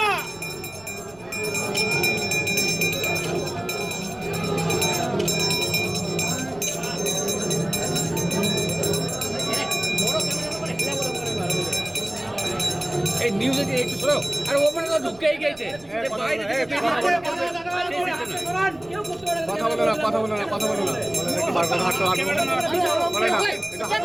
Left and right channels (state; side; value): noise; right; rumble, 25 dB below the sound